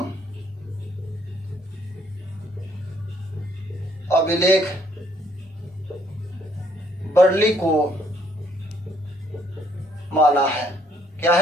अभिलेख बर्ली को माना है। क्या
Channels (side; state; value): both; normal; correlation 0.67